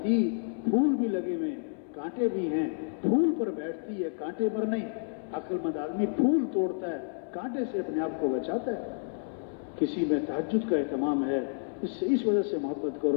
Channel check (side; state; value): right; silent; 58 dB below the other